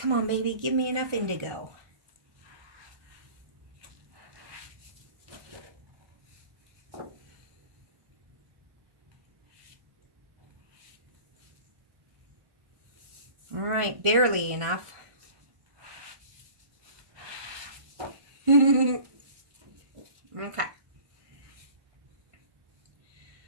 on, baby, give me enough indigo. All right, barely enough. Okay.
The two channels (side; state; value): left; late; 1.5 ms